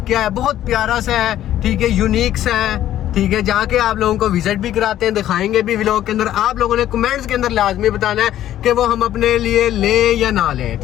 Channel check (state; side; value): quieter; right; 12.3 dB